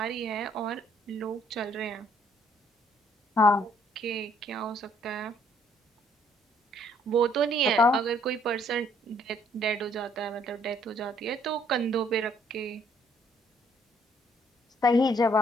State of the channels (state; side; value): normal; both; correlation 0.65